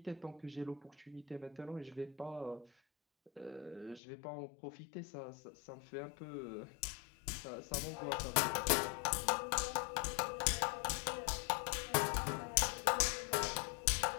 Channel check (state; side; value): drops out; right; at 4.0 s